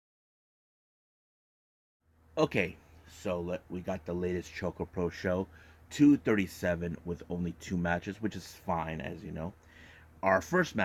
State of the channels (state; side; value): identical; both; correlation 1.00